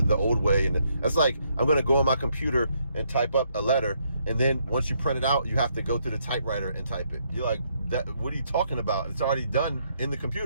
the old way. And that's like, I'm going to go on my computer and type up a letter, and then once you print it out, you have to go to the typewriter and type it. You're like, what are you talking about? It's already done in the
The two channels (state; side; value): inverted; both; correlation -0.74